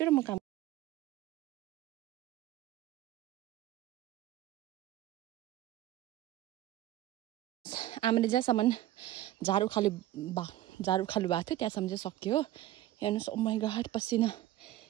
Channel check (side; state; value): left; quieter; 14.3 dB